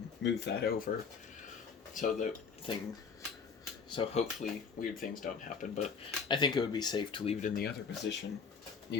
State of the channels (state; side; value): quieter; right; 5.7 dB